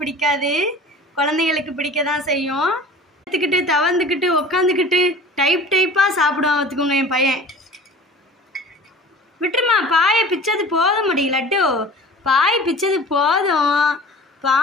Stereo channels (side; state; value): both; normal; correlation 0.42